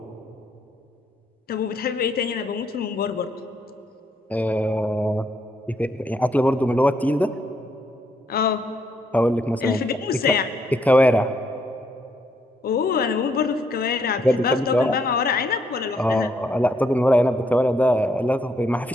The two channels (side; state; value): both; normal; correlation 0.73